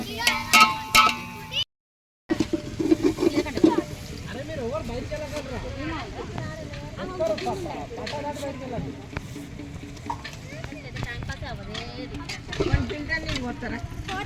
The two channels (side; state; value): both; identical; correlation 1.00